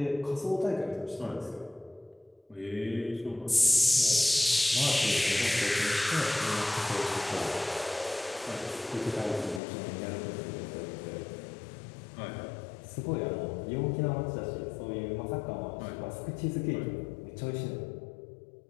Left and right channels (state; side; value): drops out; right; at 9.6 s